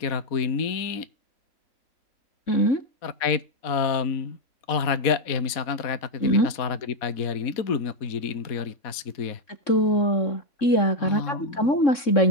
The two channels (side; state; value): right; late; 4.1 ms